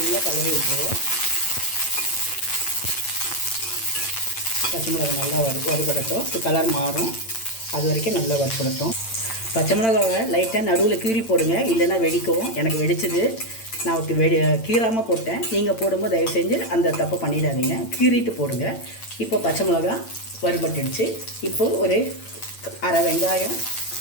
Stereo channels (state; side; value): late; right; 8.9 ms